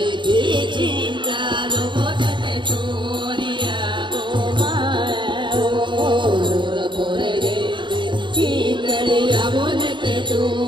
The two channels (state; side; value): late; left; 0.23 ms